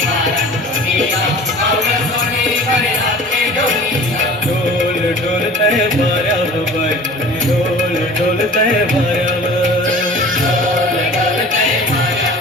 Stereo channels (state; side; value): normal; both; correlation 0.42